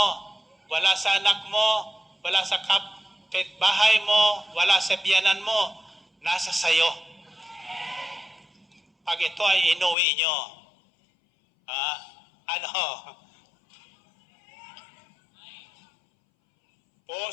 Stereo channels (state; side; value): drops out; right; at 10.0 s